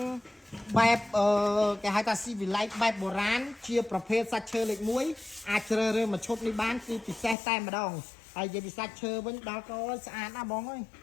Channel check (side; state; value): right; drops out; at 7.4 s